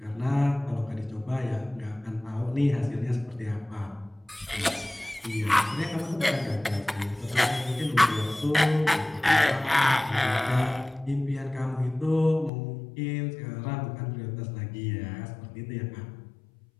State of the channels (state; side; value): drops out; right; at 12.5 s